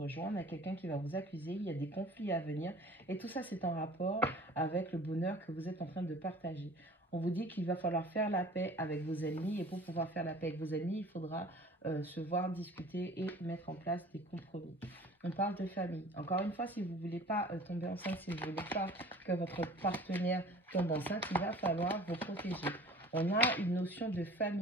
joie. On a quelqu'un qui va vous accuser. Il y a des conflits à venir. Et tout ça, c'est en rapport avec le bonheur que vous êtes en train de partager. On vous dit qu'il va falloir faire la paix avec vos ennemis. Et pour pouvoir faire la paix avec vos ennemis, il faudra se voir, discuter et mettre en place des compromis. On parle de famille. Encore une fois, si vous ne voulez pas tomber enceinte, si vous ne voulez pas que votre partenaire tombe enceinte, il va falloir vous protéger. On a une notion de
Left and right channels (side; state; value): both; normal; correlation 0.46